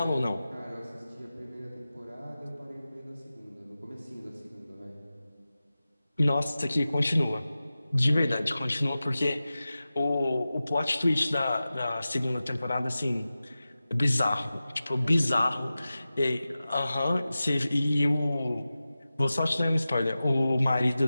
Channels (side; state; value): both; inverted; correlation -0.95